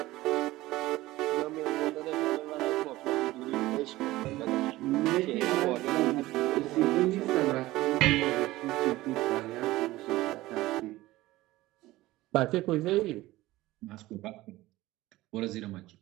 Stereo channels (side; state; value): left; quieter; 17.8 dB